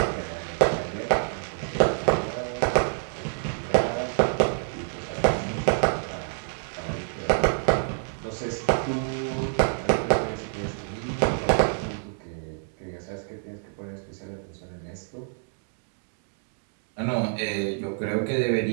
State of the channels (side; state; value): left; silent; digital silence